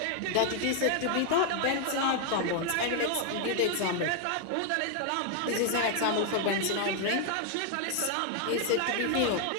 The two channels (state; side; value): different; both; correlation 0.00